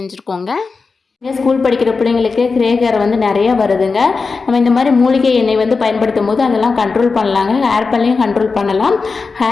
ஸ்கூல் படிக்கிற பிள்ளைங்களுக்கு கிரே ஹேர் வந்து நிறையா வருதுங்க. நம்ம இந்த மாதிரி மூலிகை எண்ணெய் வந்து பயன்படுத்தும் போது அதெல்லாம் கண்ட்ரோல் பண்ணலாங்க. ஹேர் பண்ணலையும் கண்ட்ரோல் பண்ணலாம்.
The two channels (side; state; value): right; quieter; 4.5 dB